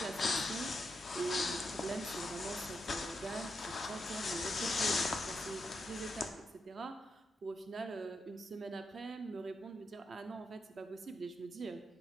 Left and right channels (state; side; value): normal; both; correlation 0.83